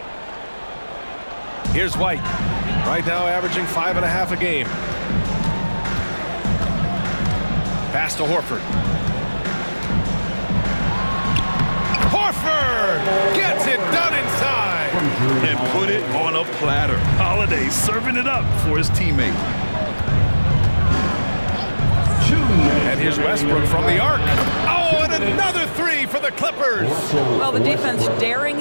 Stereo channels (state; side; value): inverted; both; correlation -1.00